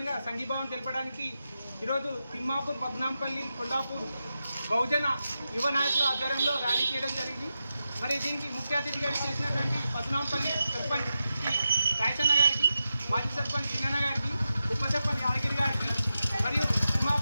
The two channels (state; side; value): inverted; both; correlation -0.90